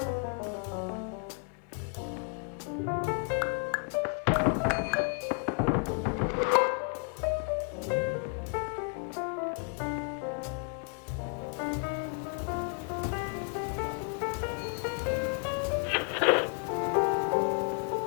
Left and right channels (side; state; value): right; quieter; 38.5 dB